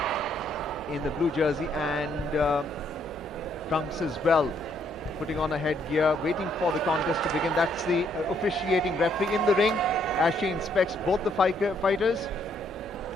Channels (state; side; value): normal; both; correlation 0.71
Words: in the blue jersey and trunks as well, putting on a headgear, waiting for the contest to begin. That's the officiating referee in the ring as she inspects both the fighters,